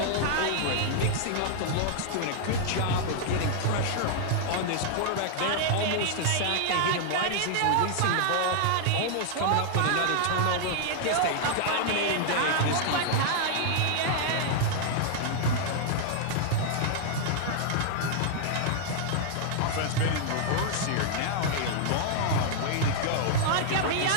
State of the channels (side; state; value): both; different; correlation -0.01